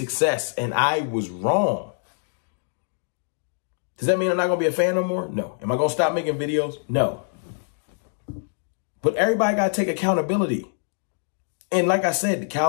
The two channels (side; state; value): right; silent; 62 dB below the other